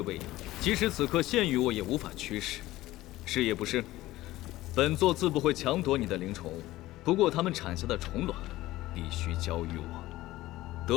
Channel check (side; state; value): right; quieter; 16.8 dB